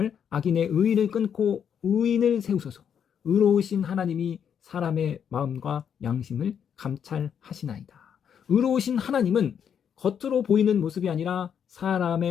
악인의 의의를 끊고 의인을 세우소서. 의로우신 하나님이 사람의 마음과 양심을 감찰하시나이다. 의로우신 하나님은 겉으로 보이는 모습이 아니라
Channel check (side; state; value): right; quieter; 8.1 dB